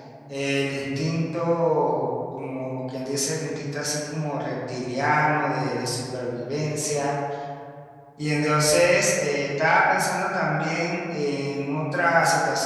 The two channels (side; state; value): both; identical; correlation 1.00